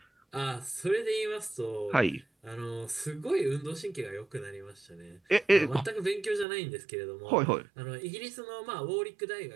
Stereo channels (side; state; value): left; drops out; at 6.5 s